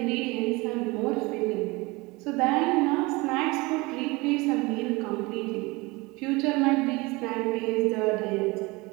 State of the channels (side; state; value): left; quieter; 23.9 dB